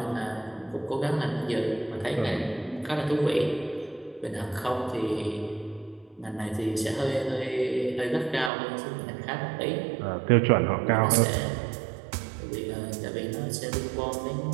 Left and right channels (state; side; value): drops out; left; at 8.5 s